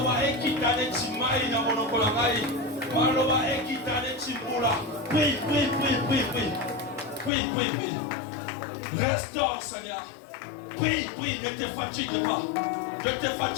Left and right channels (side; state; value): right; drops out; at 7.3 s